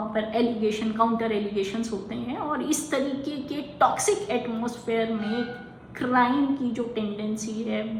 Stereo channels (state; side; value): identical; both; correlation 1.00